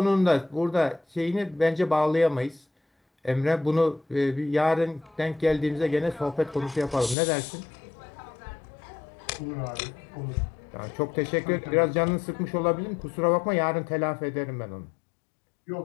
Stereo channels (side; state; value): right; drops out; at 7.2 s